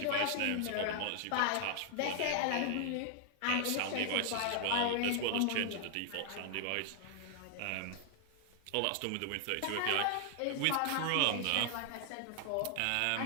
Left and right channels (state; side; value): different; both; correlation 0.00